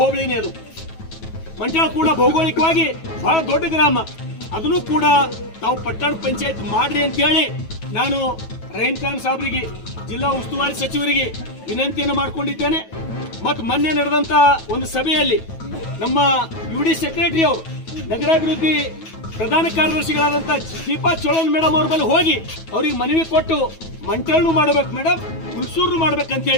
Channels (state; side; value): late; right; 9.2 ms